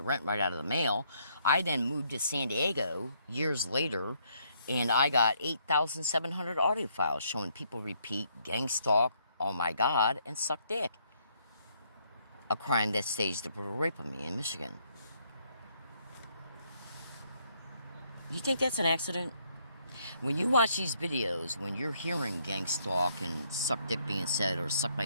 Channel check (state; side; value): inverted; both; correlation -0.70